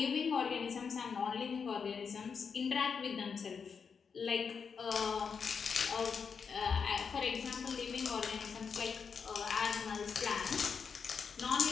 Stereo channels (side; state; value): right; quieter; 6.0 dB